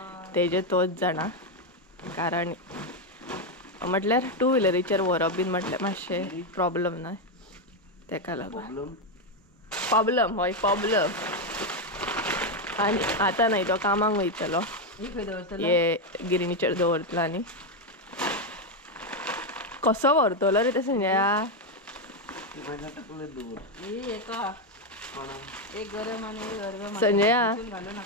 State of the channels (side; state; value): both; normal; correlation 0.05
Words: तेजे तोच जाणा कारण म्हटल्यार 2 व्हिलरीचेर व्हरप बीन म्हटल्यार मातशें प्रॉब्लम न्हय तेका लागून प्रॉब्लम हय प्रॉब्लम आणि आता नाही तो कामाक वयतलो हे गिरणीचेर दवरतलो आनी कसो व्हरतलो रे ते संजया संजया